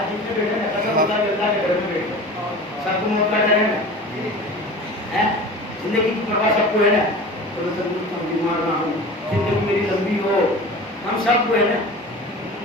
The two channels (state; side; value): normal; both; correlation 0.37